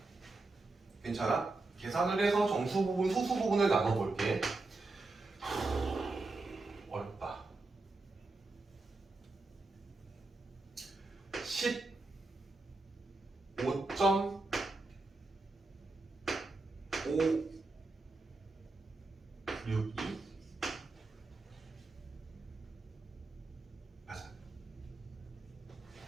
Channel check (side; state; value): left; quieter; 3.3 dB